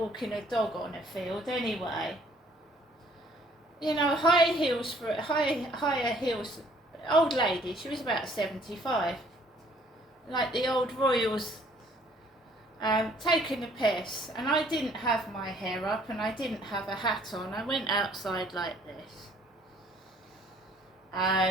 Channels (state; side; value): normal; both; correlation 0.60